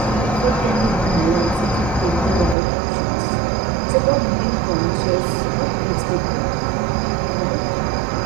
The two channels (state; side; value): drops out; left; at 2.6 s